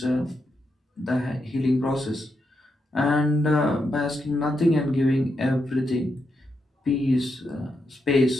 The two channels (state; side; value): normal; both; correlation 0.83